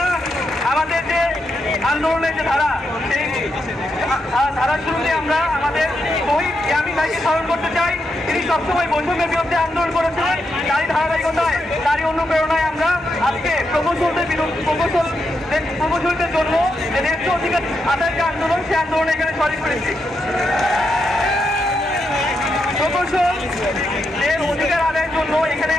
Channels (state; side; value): normal; both; correlation 0.83